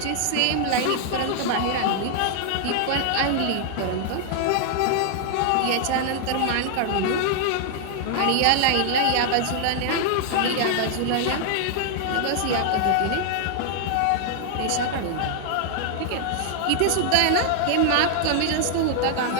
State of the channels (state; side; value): different; both; correlation 0.00